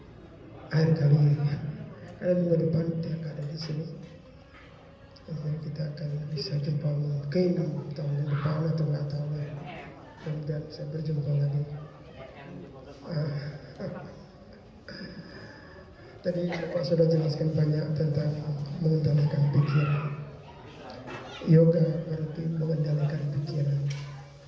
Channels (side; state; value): both; identical; correlation 1.00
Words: akhir kali karena minggu depan tidak ada di sini. Jadi kita akan bisa jumpa mungkin tahun depan atau nggak tahu ya. Kemudian saya berjumpa lagi. Tadi Bapak sudah jelaskan banyak tentang mengendalikan pikiran. Yoga berarti mengendalikan pikiran.